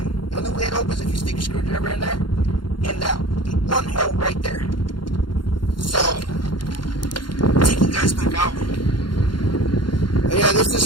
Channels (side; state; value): right; late; 0.72 ms